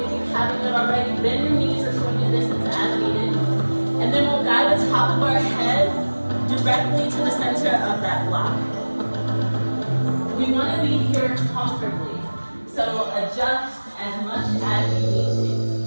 you haven't yet already. Bend your knees or swing your distance as needed. And then we'll guide the top of our head directly to the center of that block. We want to be here comfortably, so adjust as much as you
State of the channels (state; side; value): inverted; both; correlation -1.00